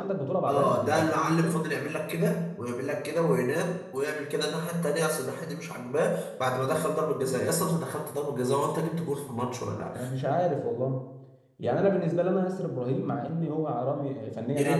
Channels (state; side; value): identical; both; correlation 1.00